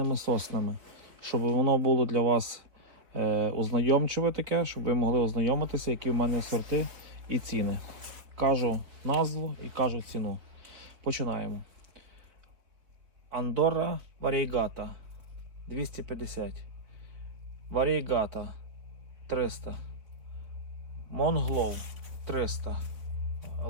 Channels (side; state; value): left; late; 4.2 ms